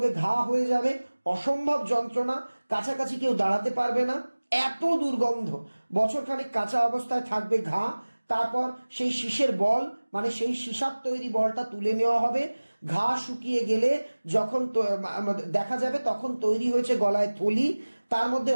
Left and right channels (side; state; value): both; inverted; correlation -1.00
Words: ঘা হয়ে যাবে, অসম্ভব যন্ত্রণা, কাছাকাছি কেউ দাঁড়াতে পারবে না, এত দুর্গন্ধ। বছরখানেক কাঁচা অবস্থায় থাকবে ঘা। তারপর সেই শীষের বল মানে সেই সীসার তৈরি বলটা তুলে নেওয়া হবে। ঘা শুকিয়ে গেলে যখন দেখা যাবে তখন তৈরি হয়েছে গলায় থলি। তার মধ্যে